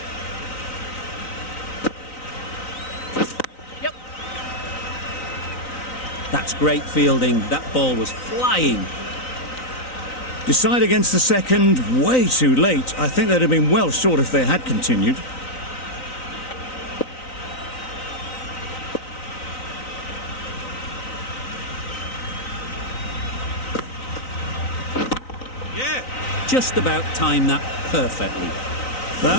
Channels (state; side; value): late; right; 3.9 ms